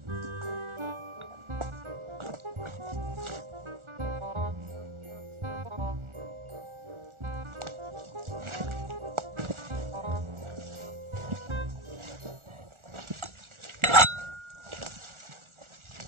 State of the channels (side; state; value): left; late; 1.4 ms